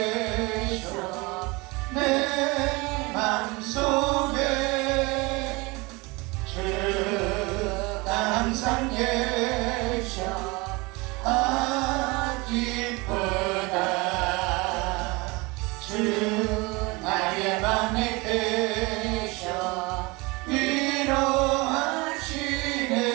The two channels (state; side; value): quieter; left; 25.1 dB